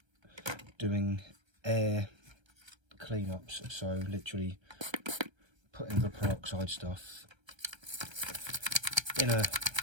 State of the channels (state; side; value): late; left; 1.3 ms